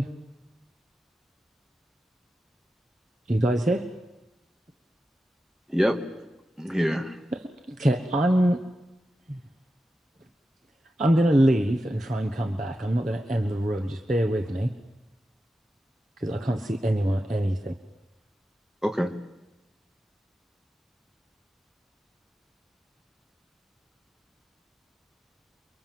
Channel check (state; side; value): normal; both; correlation 0.91